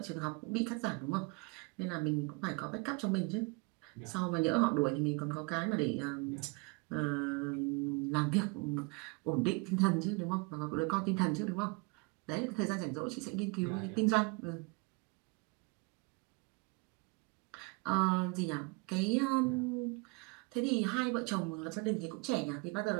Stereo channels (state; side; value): quieter; left; 29.3 dB